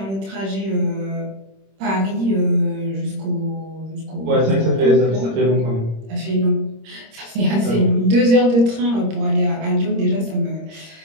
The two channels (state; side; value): late; left; 26 ms